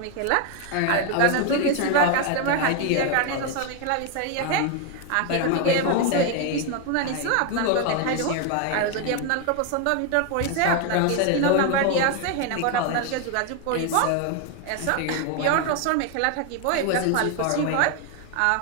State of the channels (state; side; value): different; both; correlation 0.01